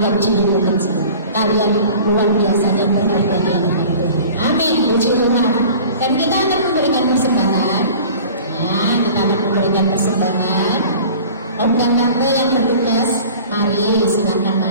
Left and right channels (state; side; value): inverted; both; correlation -0.43